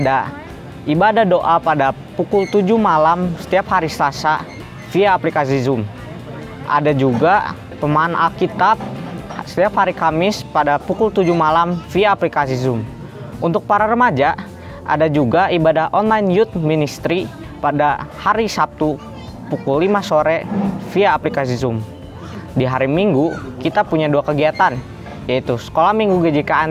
ibadah doa pada pukul 7 malam setiap hari Selasa via aplikasi Zoom. Ada juga pemahaman Alkitab setiap hari Kamis pada pukul 7 malam via aplikasi Zoom. Untuk para remaja, ada juga ibadah online youth ministry pada hari Sabtu pukul 5 sore via aplikasi Zoom. Di hari Minggu, kita punya dua kegiatan, yaitu Sekolah Minggu GJK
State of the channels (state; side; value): identical; both; correlation 1.00